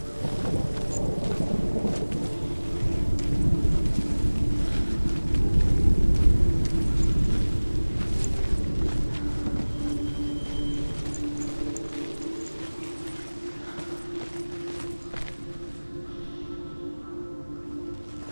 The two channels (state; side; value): inverted; both; correlation -1.00